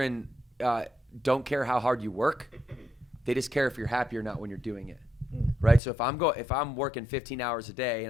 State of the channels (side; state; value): right; drops out; at 5.8 s